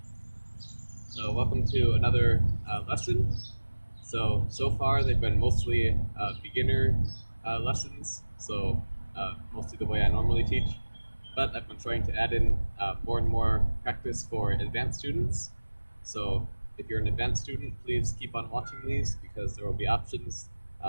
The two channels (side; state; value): both; inverted; correlation -1.00